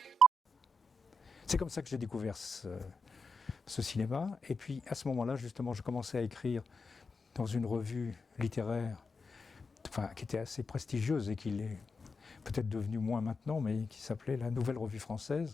C'est comme ça que j'ai découvert ce cinéma. Et puis à ce moment-là, justement, je commençais à écrire dans une revue littéraire, qui était assez prestigieuse et qui l'est peut-être devenue moins maintenant, mais qui s'appelait la Nouvelle Revue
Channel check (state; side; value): normal; both; correlation 0.85